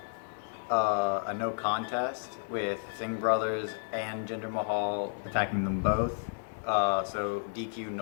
a no contest with Singh Brothers and Jinder Mahal attacking them both. So DQ,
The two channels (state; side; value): silent; right; digital silence